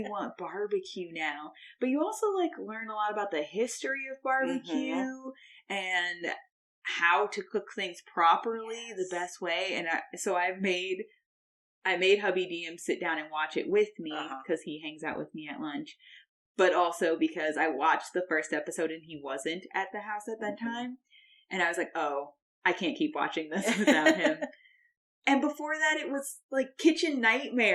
want barbecue now. But you also learn a lot about the history of barbecue and how to cook things properly, the best way. And so I made hubby DM sit down and watch it with me because he hangs out with me at lunch. But also because I watched the first episode and he wasn't at the house at that time. And I was like, oh, I can't keep watching this without him. And before that, it was Kitchen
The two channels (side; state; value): both; identical; correlation 1.00